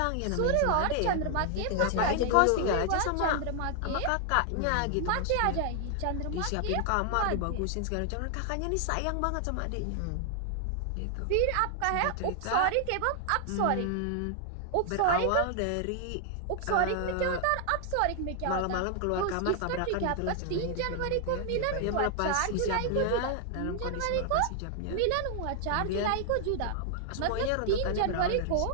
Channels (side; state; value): both; different; correlation 0.00